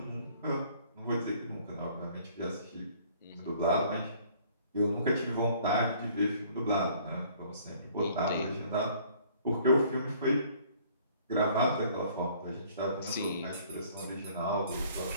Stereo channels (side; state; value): both; inverted; correlation -0.57